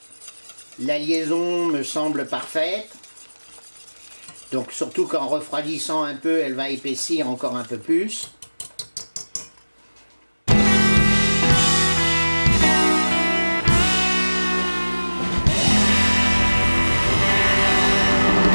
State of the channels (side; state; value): both; inverted; correlation -1.00